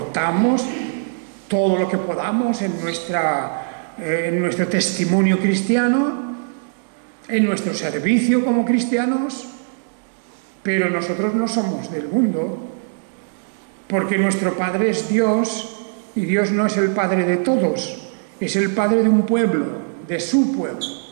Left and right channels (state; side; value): silent; left; digital silence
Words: todo lo que podamos en nuestro testimonio cristiano, en nuestro servicio como cristianos, pero nosotros no somos del mundo, porque nuestro Padre es Dios, y Dios no es el Padre de todos, es el Padre de un pueblo, de su pueblo.